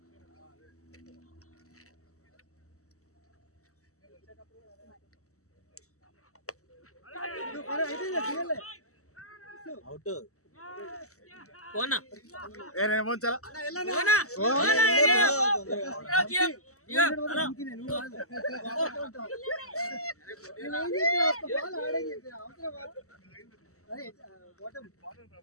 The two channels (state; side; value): late; right; 0.64 ms